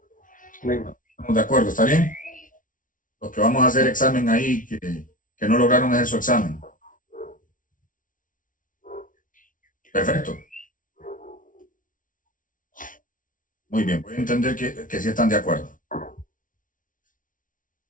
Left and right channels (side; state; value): right; late; 0.38 ms